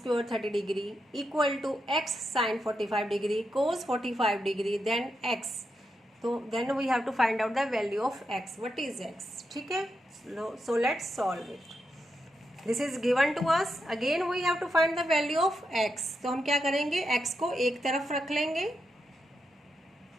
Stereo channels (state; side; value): normal; both; correlation 0.85